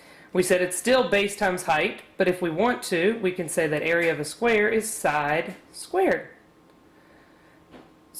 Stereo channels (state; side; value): identical; both; correlation 1.00